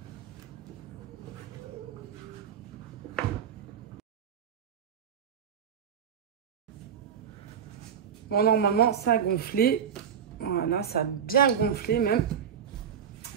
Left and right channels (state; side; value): quieter; left; 8.1 dB